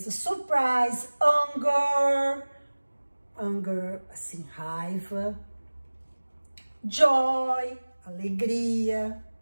surprise, anger, assim, raiva, joy, alegria,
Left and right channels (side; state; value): both; inverted; correlation -1.00